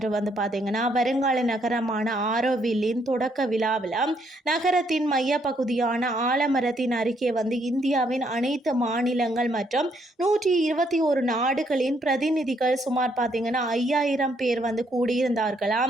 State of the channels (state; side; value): normal; both; correlation 0.71